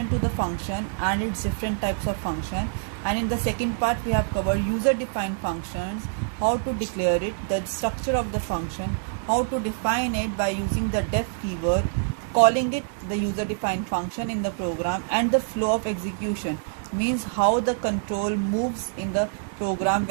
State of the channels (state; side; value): silent; left; 57 dB below the other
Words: to the function and its different types of function, and in the second part we have covered user defined functions, how to declare it, the structure of the function, how to define it by using the def keyword, calling it the user defined function in the program, and the flow of execution, means how the control moves in the program